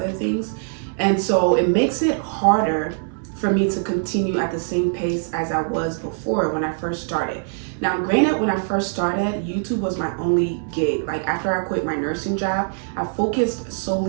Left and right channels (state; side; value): silent; left; digital silence